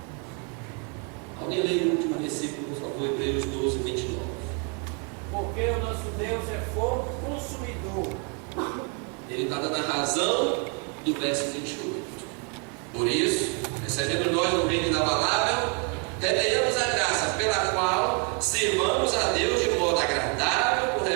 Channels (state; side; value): quieter; left; 35.1 dB